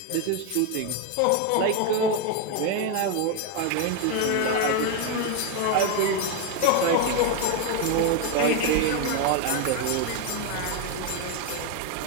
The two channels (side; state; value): both; different; correlation 0.02